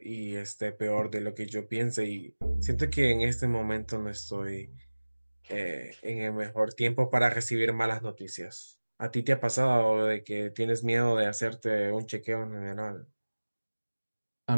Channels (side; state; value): both; inverted; correlation -1.00